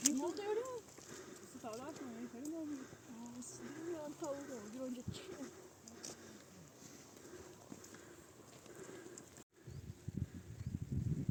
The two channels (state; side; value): identical; both; correlation 1.00